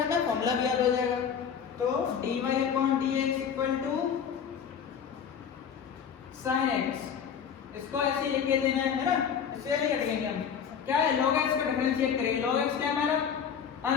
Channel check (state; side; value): quieter; right; 7.5 dB